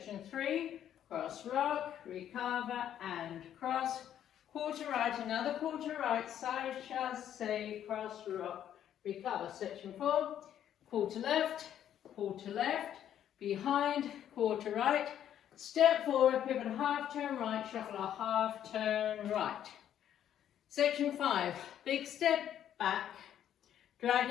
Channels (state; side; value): quieter; right; 10.4 dB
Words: 3, cross rock, recover and cross, quarter right, another quarter right, side chasse, cross rock, recover. Section 4, quarter left, behind, quarter right, step forward, pivot a half turn right, shuffle a half turn right. Section 5, big step back,